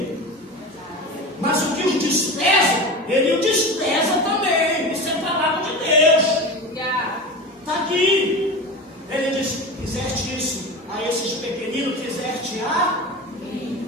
Mas o que os despreza, Ele o despreza também. Isso é palavra de Deus. Está aqui. Ele diz: fizeste isso a esses pequeninos, fizeste a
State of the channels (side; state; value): both; normal; correlation 0.28